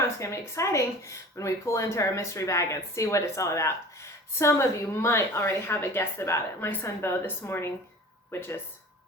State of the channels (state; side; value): normal; both; correlation 0.40